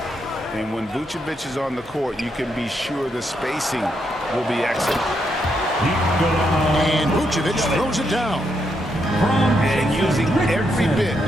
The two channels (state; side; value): normal; both; correlation 0.79